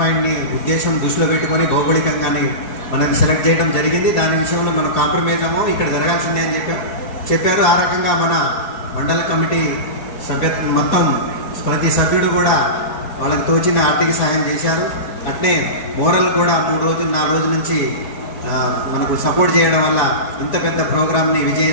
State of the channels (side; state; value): right; late; 4.6 ms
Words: ఉద్దేశం దృష్టిలో పెట్టుకొని భౌగోళికంగానే మనకి సెలెక్ట్ చేయడం జరిగింది. దాని విషయంలో మనం కాంప్రమైజ్ అమ్మో, ఇక్కడ జరగాల్సిందే అని చెప్పారు. ఆ రకంగా మన మండల కమిటీ సభ్యత్వం మొత్తం ప్రతి సభ్యుడు కూడా వాళ్ళకి తోచిన ఆర్థిక సహాయం చేశారు. అట్నే మోరల్ కూడా 3 రోజులు 4 రోజుల నుంచి మనకు సపోర్ట్ చేయడం వల్ల ఇంత పెద్ద ప్రోగ్రామ్ని